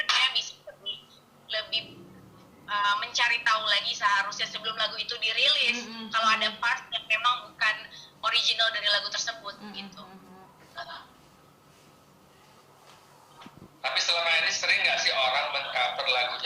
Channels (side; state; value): both; identical; correlation 1.00